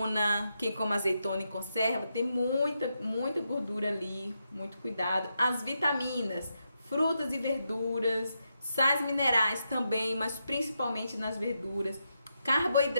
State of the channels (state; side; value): inverted; both; correlation -0.84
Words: quem come azeitona em conserva, tem muita gordura ali, muito cuidado. As vitaminas, frutas e verduras, sais minerais também, mas principalmente nas verduras.